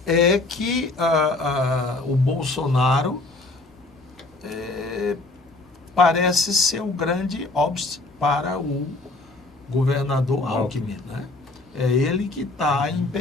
é que o Bolsonaro parece ser o grande obstáculo para o governador Alckmin, né? É ele que está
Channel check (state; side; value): quieter; right; 3.1 dB